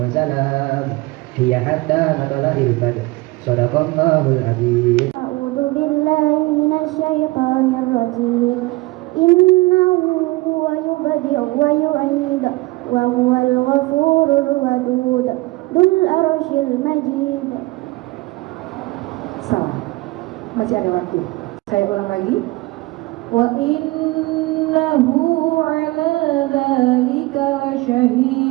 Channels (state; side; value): quieter; left; 21.7 dB